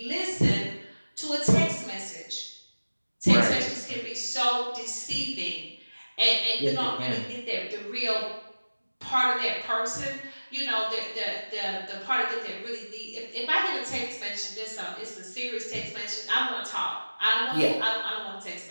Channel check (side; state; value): both; inverted; correlation -1.00